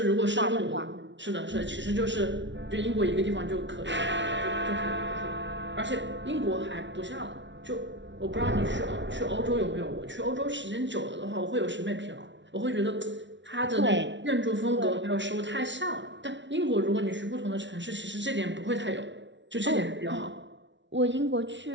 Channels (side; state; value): left; late; 0.53 ms